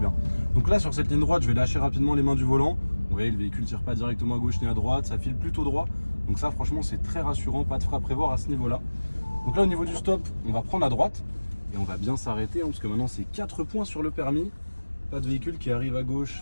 Donc là, sur cette ligne droite, je vais lâcher rapidement les mains du volant. Vous voyez, le véhicule ne tire pas directement à gauche ni à droite. Ça file plutôt droit. Donc ça, franchement, c'est très rassurant. Pas de frein à prévoir à ce niveau-là. Donc là, au niveau du stop, on va prendre à droite. Et on va bien s'arrêter, hein, parce que maintenant, c'est 4 points sur le permis. Pas de véhicule qui arrive à gauche.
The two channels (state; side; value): inverted; both; correlation -1.00